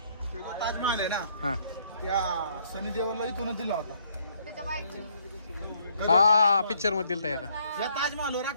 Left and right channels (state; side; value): inverted; both; correlation -0.67